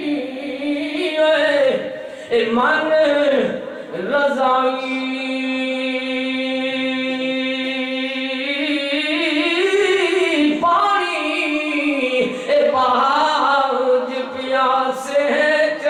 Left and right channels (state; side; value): identical; both; correlation 1.00